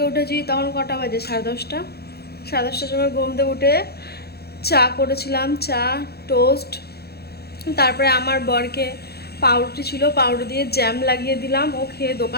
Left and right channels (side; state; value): right; late; 0.46 ms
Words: উঠেছি তখন কটা বাজে, সাড়ে দশটার সময় ঘুম থেকে উঠে চা করেছিলাম, চা টোস্ট। তারপরে আমার বরকে পাউরুটি ছিল, পাউরুটি দিয়ে জ্যাম লাগিয়ে দিলাম, ও খেয়ে